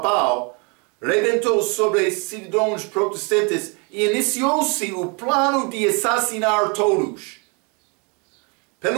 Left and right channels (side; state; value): left; quieter; 33.0 dB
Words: rebentou sobre cidadãos protestantes e iniciou-se o plano de assassinar todos.